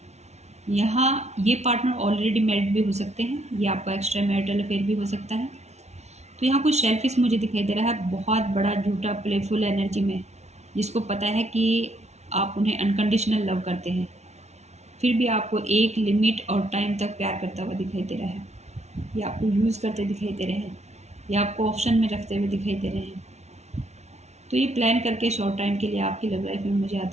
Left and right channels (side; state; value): left; late; 0.32 ms